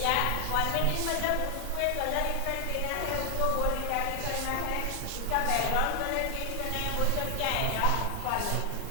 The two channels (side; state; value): both; different; correlation 0.00